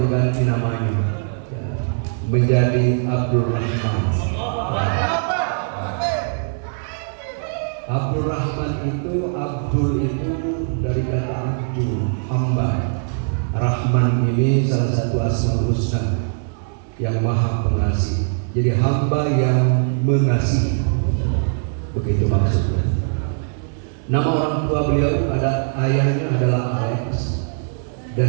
namanya menjadi Abdul Rahman. Abdul Rahman itu, Abdul itu dari kata Abdul, hamba. Rahman ini salah satu asmaul husna, yang maha pengasih. Jadi hamba yang mengasihi, begitu maksudnya. Nama orang tua beliau ada, ayahnya adalah Alex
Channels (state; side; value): silent; left; digital silence